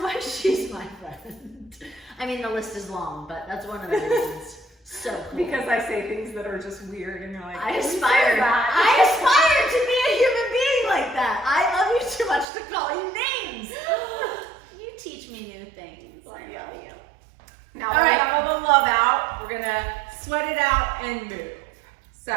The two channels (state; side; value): drops out; left; at 12.5 s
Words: she's my friend. I mean, the list is long, but that's one of the reasons. So cool. Because I say things that are just weird and you're like, I aspire to be a human being like that. I love you too much to call you names. You teach me new things. I love you. Now we're gonna have all the love out. We're gonna sweat it out and move. So,